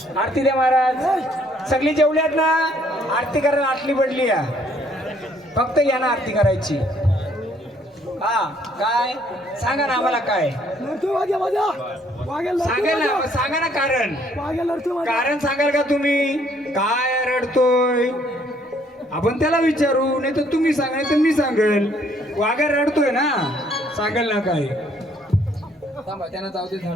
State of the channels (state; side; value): normal; both; correlation 0.65